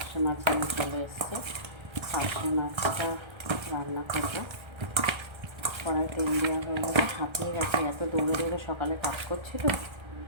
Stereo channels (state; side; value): late; left; 1.3 ms